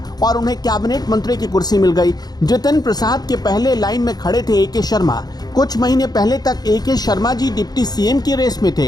और उन्हें कैबिनेट मंत्री की कुर्सी मिल गई। जितिन प्रसाद के पहले लाइन में खड़े थे ए.के. शर्मा। कुछ महीने पहले तक A K. Sharma ji deputy CM की रेस में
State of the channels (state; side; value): late; right; 0.19 ms